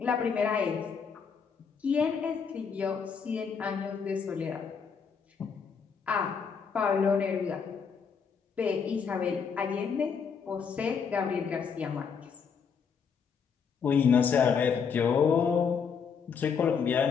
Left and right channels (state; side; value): quieter; right; 6.3 dB